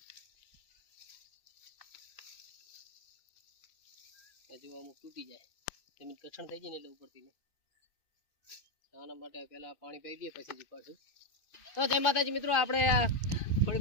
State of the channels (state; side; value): late; right; 2.5 ms